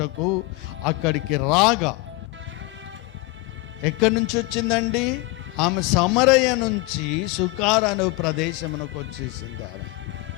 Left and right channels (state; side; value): quieter; right; 21.9 dB